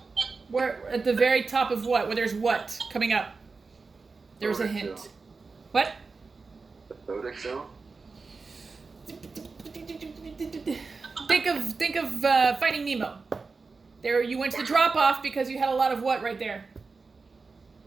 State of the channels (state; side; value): quieter; left; 4.3 dB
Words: Where at the very top of what? Where there's what coming up? There's a Nordic hint. zone. What? The Nordic zone? Think of Finding Nemo. There, you went to the drop off because you had a lot of what right there?